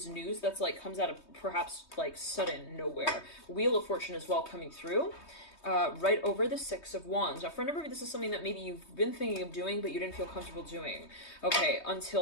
news that's like comes out of perhaps like sudden nowhere. Wheel of Fortune as well coming through. Right over the 6 of Wands. Now, for a number of you, this is something that maybe you've been thinking of doing, but you didn't feel comfortable doing. Okay,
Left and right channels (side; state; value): right; late; 3.2 ms